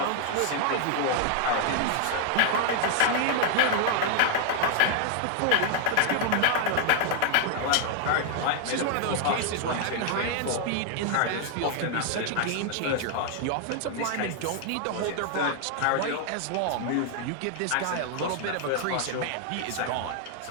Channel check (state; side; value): different; both; correlation 0.00